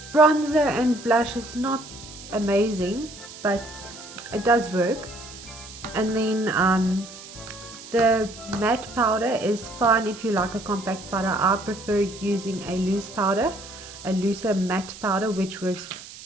bronzer and blush is not amazing, but it does work. And then the matte powder is fine if you like a compact powder. I prefer using a loose powder, a looser matte powder, which works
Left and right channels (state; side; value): noise; right; hiss, 16 dB below the sound